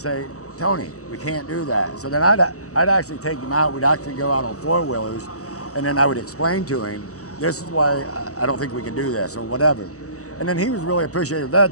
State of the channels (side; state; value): right; late; 0.66 ms